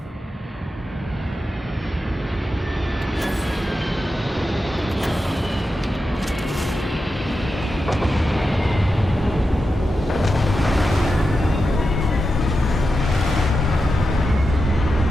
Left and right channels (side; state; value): both; normal; correlation 0.89